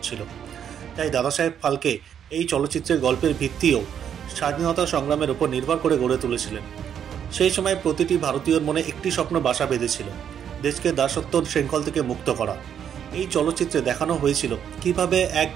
তাই দাদাসাহেব ফালকে এই চলচ্চিত্রের গল্পের ভিত্তিও স্বাধীনতা সংগ্রামের উপর নির্ভর করে গড়ে তুলেছিলেন। সেই সময় প্রতিটি ভারতীয়র মনে একটি স্বপ্ন বাসা বেঁধেছিল, দেশকে দাসত্ব শৃঙ্খল থেকে মুক্ত করা। এই চলচ্চিত্রে দেখানো হয়েছিল কিভাবে এক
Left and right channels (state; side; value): quieter; left; 8.8 dB